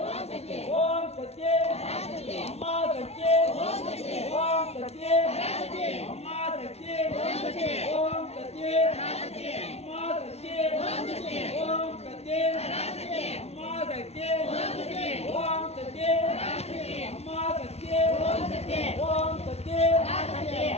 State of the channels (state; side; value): late; right; 0.31 ms